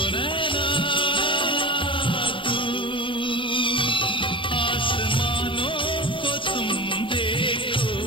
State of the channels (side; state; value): right; late; 0.25 ms